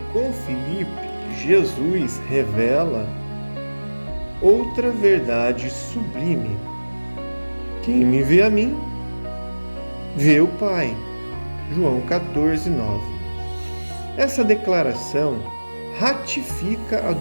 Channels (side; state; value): both; inverted; correlation -1.00